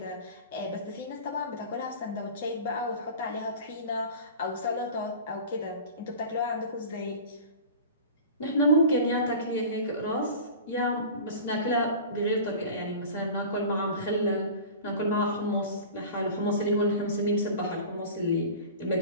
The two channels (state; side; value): inverted; both; correlation -0.37